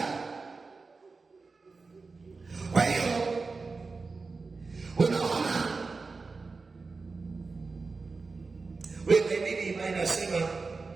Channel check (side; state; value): left; quieter; 4.2 dB